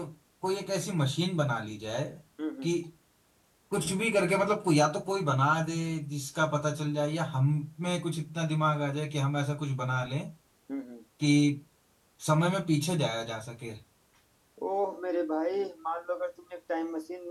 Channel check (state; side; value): identical; both; correlation 1.00